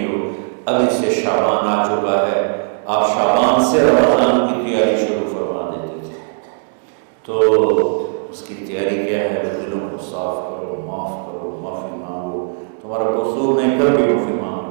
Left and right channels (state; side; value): silent; left; digital silence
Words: ہو، ابھی سے شعبان آ چکا ہے، آپ شعبان سے رمضان کی تیاری شروع فرما دیتے تھے۔ تو اس کی تیاری کیا ہے؟ دلوں کو صاف کرو، معاف کرو، معافی مانگو، تمہارا قصور نہیں پھر بھی معافی